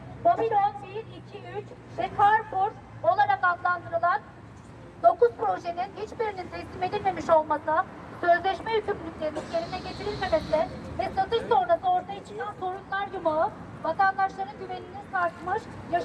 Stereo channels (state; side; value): identical; both; correlation 1.00